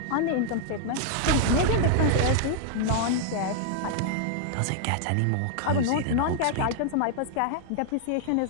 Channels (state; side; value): different; both; correlation 0.00